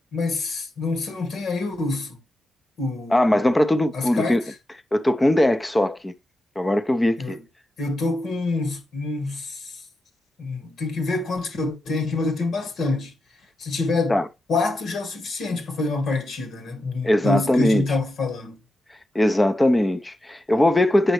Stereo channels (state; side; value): normal; both; correlation 0.89